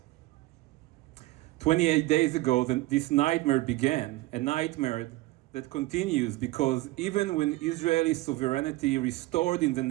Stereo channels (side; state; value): left; quieter; 19.1 dB